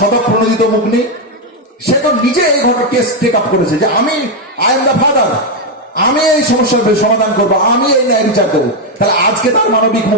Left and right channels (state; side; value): normal; both; correlation 0.03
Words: মুখ নেই। সে তো নিজে এই ঘটনা কেস টেক আপ করেছে যে আমি, আই এম দ্য ফাদার, আমি এই সমস্যার সমাধান করবো, আমি এই ন্যায় বিচার দেবো। তাহলে আজকে তার মানবিক